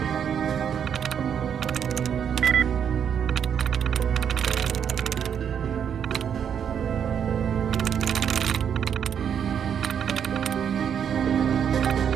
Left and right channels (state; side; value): quieter; left; 8.1 dB